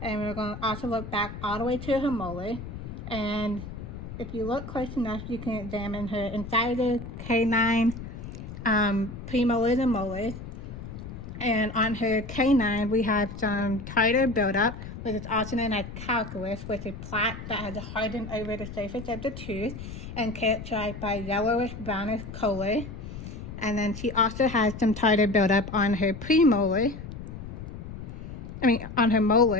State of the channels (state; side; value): noise; left; rumble, 10 dB below the sound